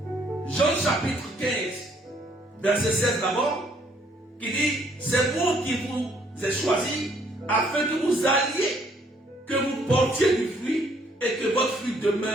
Jean chapitre 15, verset 16 d'abord, qui dit, c'est moi qui vous ai choisi afin que vous alliez, que vous portiez du fruit et que votre fruit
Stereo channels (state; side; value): normal; both; correlation 0.65